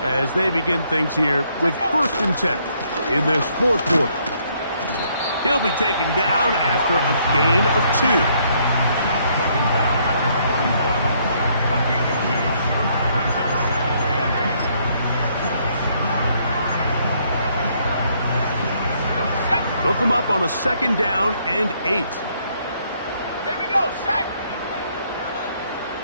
as they begin things here with 1st and 10 in this 4th quarter. He'll be taken down after a gain of 2. They'll come up on a 2nd down and 8. Here we go, set.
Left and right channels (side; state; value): both; inverted; correlation -0.69